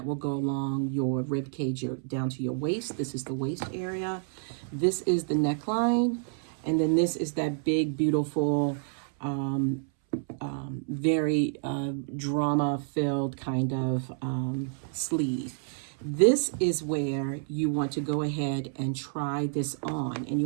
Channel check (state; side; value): silent; left; 58 dB below the other